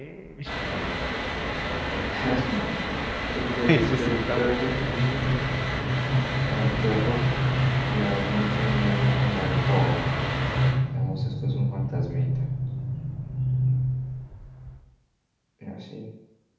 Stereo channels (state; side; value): identical; both; correlation 1.00